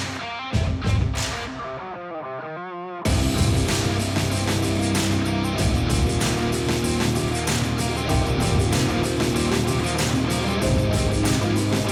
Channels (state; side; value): identical; both; correlation 1.00